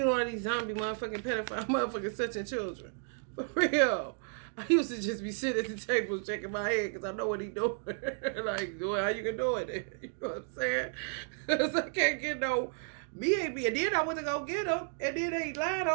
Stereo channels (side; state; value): left; silent; 56 dB below the other